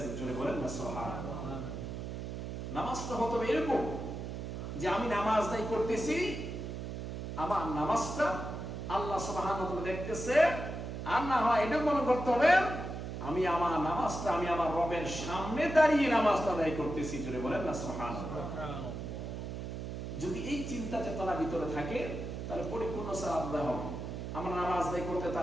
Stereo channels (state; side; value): noise; right; hum, 6 dB below the sound